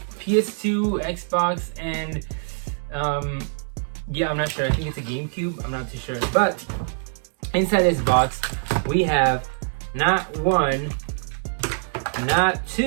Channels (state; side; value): silent; left; digital silence